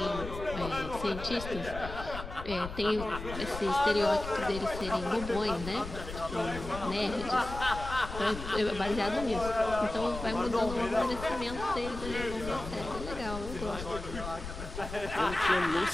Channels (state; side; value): noise; left; rumble, 9 dB below the sound